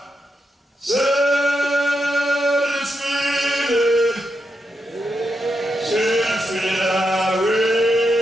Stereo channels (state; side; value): normal; both; correlation 0.85